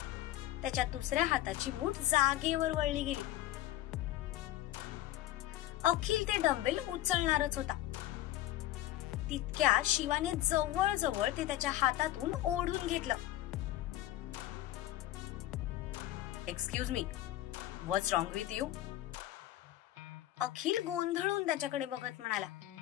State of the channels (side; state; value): right; quieter; 14.3 dB